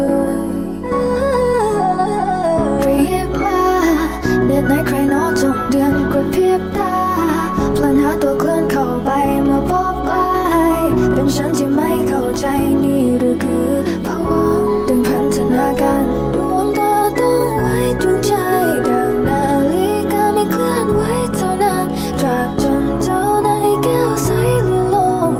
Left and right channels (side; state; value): both; identical; correlation 1.00